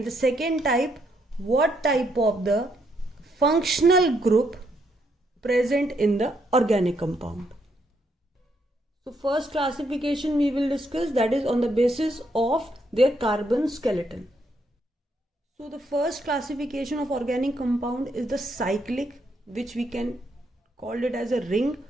the second type, what type of the functional group present in the organic compound. So first classification we will discuss, that is on the basis of their carbon skeleton. So the first classification of organic compound is the cyclic, which we can call it as a ring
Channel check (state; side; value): normal; both; correlation 0.75